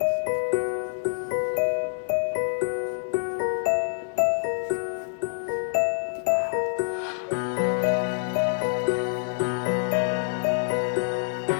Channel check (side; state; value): right; silent; digital silence